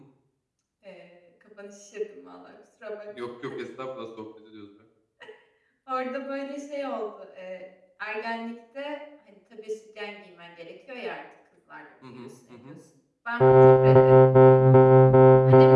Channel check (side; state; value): both; identical; correlation 1.00